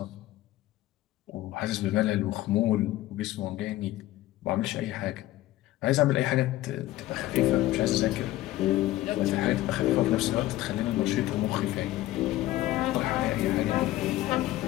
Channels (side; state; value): right; quieter; 15.9 dB